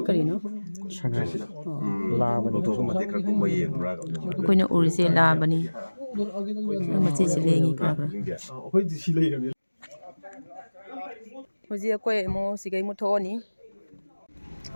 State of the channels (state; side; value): inverted; both; correlation -1.00